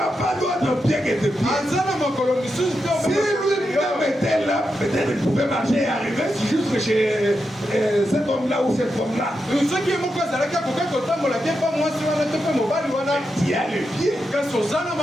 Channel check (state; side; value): normal; both; correlation 0.86